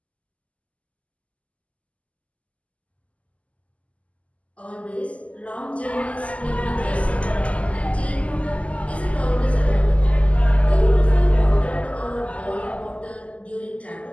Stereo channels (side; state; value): right; late; 0.066 ms